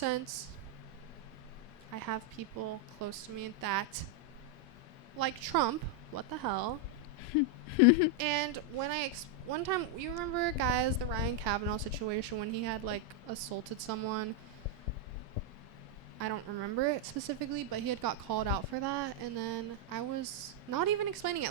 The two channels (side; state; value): both; normal; correlation 0.00